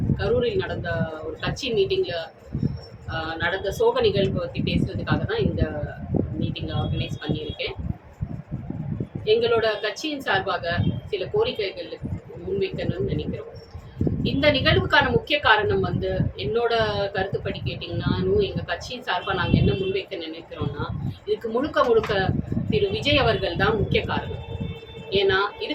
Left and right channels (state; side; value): identical; both; correlation 1.00